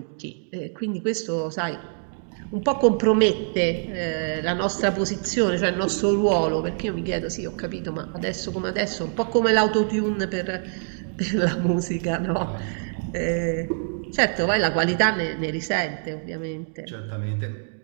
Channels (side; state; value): left; silent; digital silence